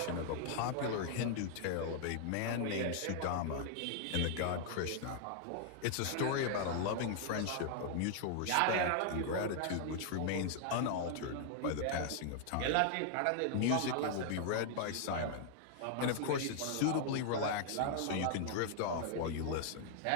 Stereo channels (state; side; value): different; both; correlation 0.00